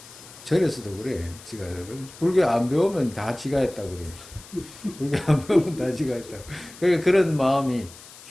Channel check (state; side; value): noise; left; hiss, 19 dB below the sound